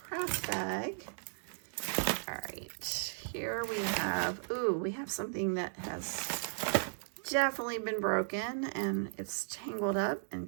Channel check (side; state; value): left; silent; digital silence